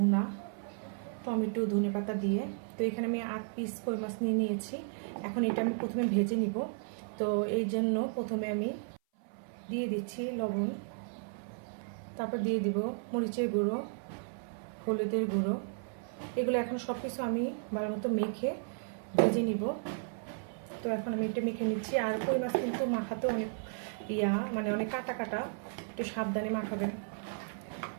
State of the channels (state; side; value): silent; left; 55 dB below the other